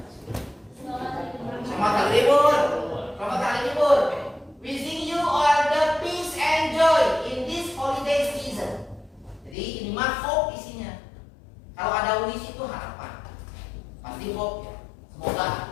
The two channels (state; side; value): drops out; right; at 9.6 s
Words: Selamat hari libur. Selamat hari libur. Wishing you all the peace and joy in this holiday season. Jadi ini mah hope isinya. Kalau ada wish itu harapan. Pasti hope ya. Semoga.